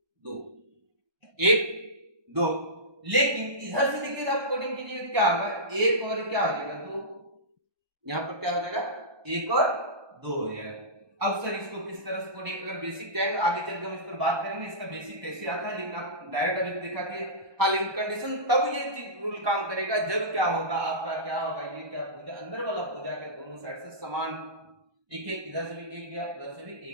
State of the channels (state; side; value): late; left; 1.2 ms